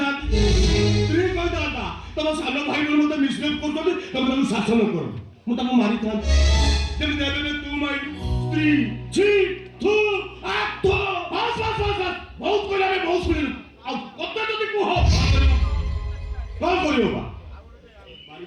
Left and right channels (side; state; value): both; identical; correlation 1.00